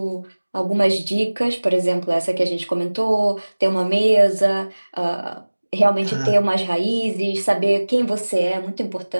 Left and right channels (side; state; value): both; inverted; correlation -1.00